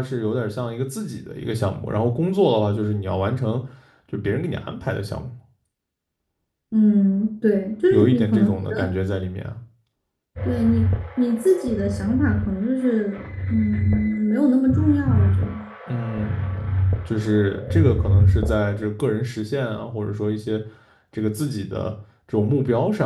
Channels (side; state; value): both; identical; correlation 1.00